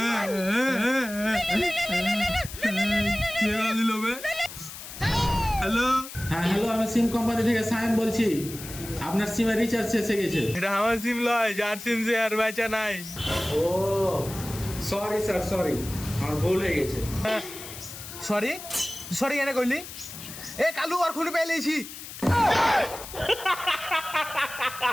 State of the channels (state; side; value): noise; left; hiss, 12 dB below the sound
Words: হ্যালো, হ্যাঁ হ্যালো, আমি সিম কোম্পানি থেকে সায়েম বলছি। আপনার সিমে রিচার্জ শেষ হয়ে গেছে। এটা আমার সিম লয়, যার সিম সে আর বেচা নাই। ও সরি স্যার, সরি, আমার ভুল হয়ে গেছে। সরি সরি কেন কইলি? এ কালু আর খুলে পেলেছি।